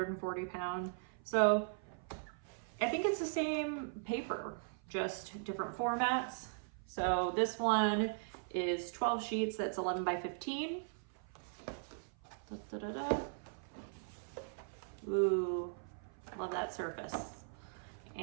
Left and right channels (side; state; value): left; silent; 52 dB below the other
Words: pound. So I think it's the same paper. just different formats. So this one is 12 sheets, that's 11 by 15. Da, da, da, da. Ooh, love that surface.